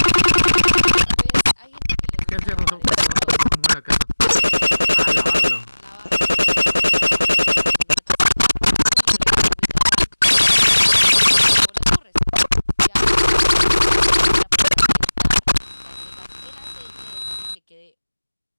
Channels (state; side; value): inverted; both; correlation -1.00